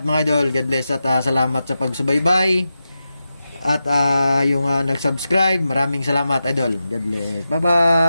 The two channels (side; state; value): both; inverted; correlation -0.91